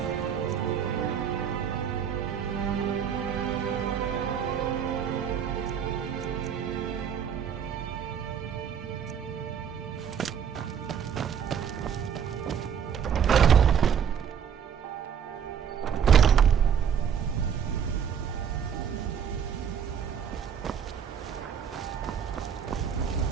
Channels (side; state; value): left; quieter; 7.9 dB